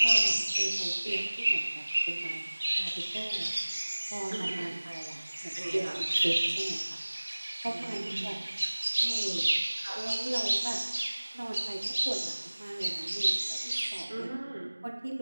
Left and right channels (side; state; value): both; inverted; correlation -1.00